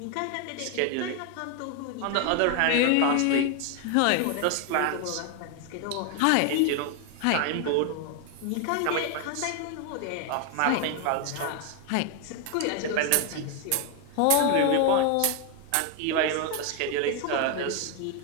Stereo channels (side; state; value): both; different; correlation 0.01